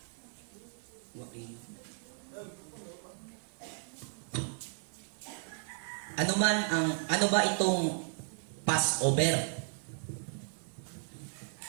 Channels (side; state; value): left; silent; digital silence